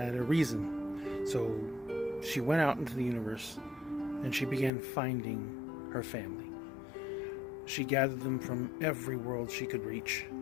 a reason. So she went out into the universe and she began finding her family. She gathered them from every world she could reach.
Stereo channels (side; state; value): right; drops out; at 4.7 s